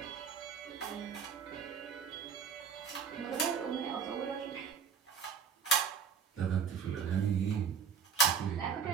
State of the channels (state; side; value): quieter; left; 6.5 dB